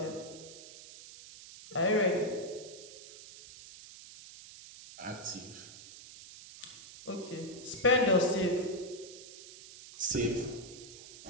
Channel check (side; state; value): right; noise; hiss, 16 dB below the sound